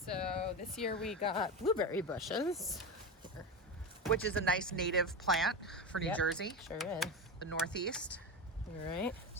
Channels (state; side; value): normal; both; correlation 0.20